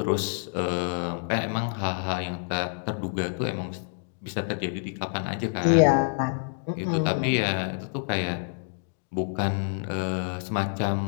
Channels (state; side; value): silent; right; digital silence